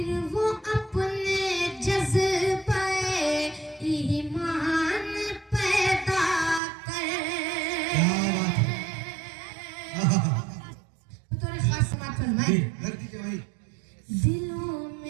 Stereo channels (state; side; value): drops out; left; at 6.6 s